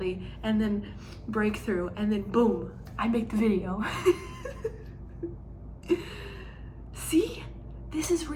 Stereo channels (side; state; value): both; identical; correlation 1.00